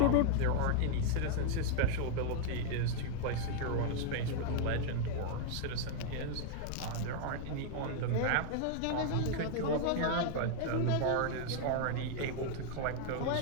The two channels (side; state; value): both; different; correlation 0.00